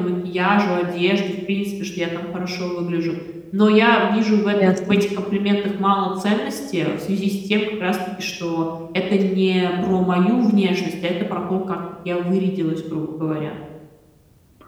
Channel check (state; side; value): identical; both; correlation 1.00